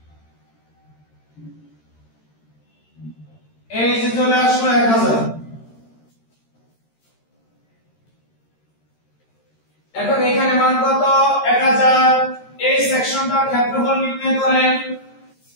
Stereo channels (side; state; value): right; late; 13 ms